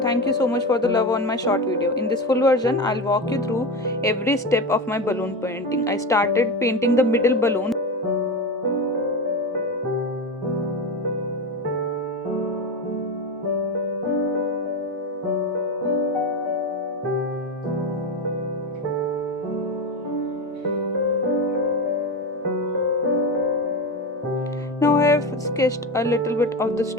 thank you so much for the love on my short video. In this full version, I'll walk you through every step of my balloon painting. I started painting the middle balloon. Now I have sketched a little bit of the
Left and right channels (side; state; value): both; normal; correlation 0.21